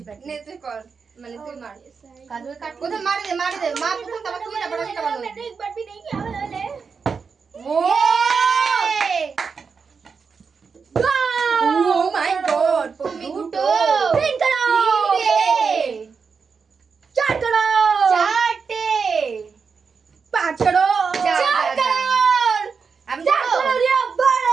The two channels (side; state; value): left; quieter; 5.5 dB